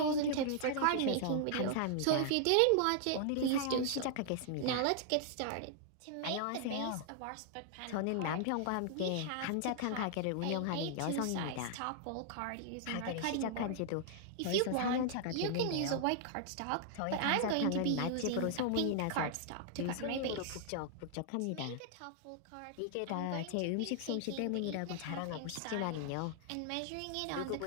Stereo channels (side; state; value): both; different; correlation -0.01